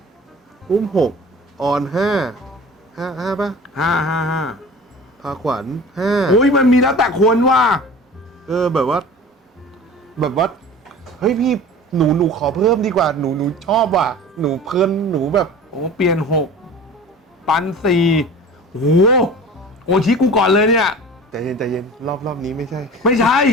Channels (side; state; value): both; normal; correlation 0.39